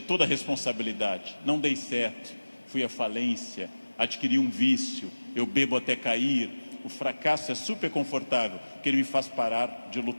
toda a responsabilidade. Não dei certo, fui à falência, adquiri um vício, eu bebo até cair. O fracasso é super confortável, porque ele me faz parar de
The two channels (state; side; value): inverted; both; correlation -1.00